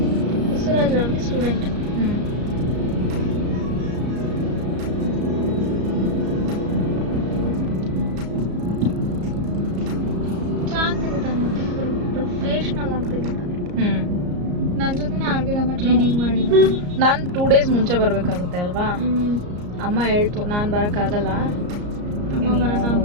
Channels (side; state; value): left; late; 34 ms